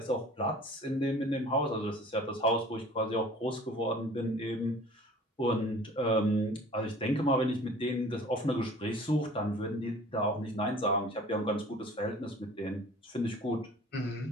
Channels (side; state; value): both; normal; correlation 0.47